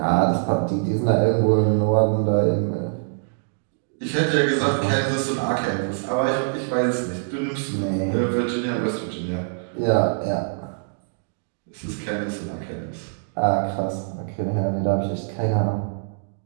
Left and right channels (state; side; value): silent; left; digital silence